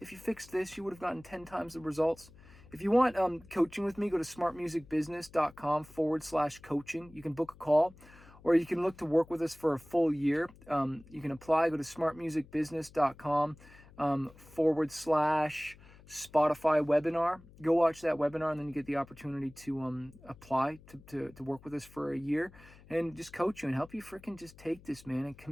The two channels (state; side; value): noise; left; hum, 23 dB below the sound